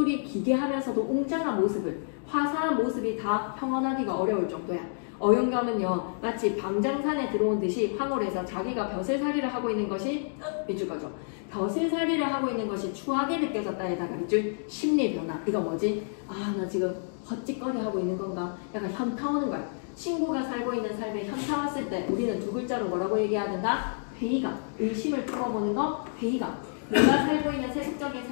기괴하면서도 웅장한 모습을, 화사한 모습이 다 평언하기가 어려울 정도야. 어윤겸은요 마치 방장산에 들어온 듯이 황홀해서 자기가 벼슬살이를 하고 있는 것이 밑줄 거죠. 벼슬살이를 하고 있는 것이 추하게 느껴졌다에다가 밑줄. 심리 변화. 이거 뭐지? 아, 나 지금 헛짓거리 하고 있는 건가? 약간 현타 오는 거야. 친구가 살고 있는 삶에 현타 왔을 때 우리는 두 글자로 뭐라고 얘기해야 된다? 회의감. 의심을 풀어보는 거 회의감. 내가 살고 있는 세속적인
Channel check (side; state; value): right; silent; digital silence